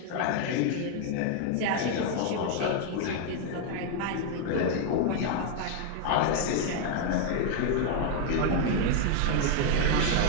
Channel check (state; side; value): different; both; correlation 0.00